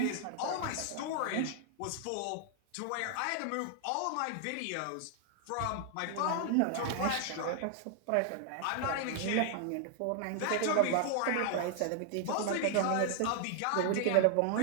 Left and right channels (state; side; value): different; both; correlation 0.00